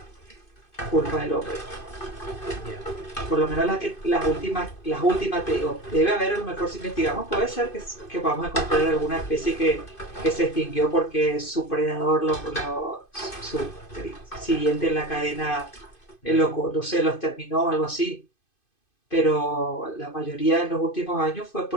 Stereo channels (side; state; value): right; late; 2.5 ms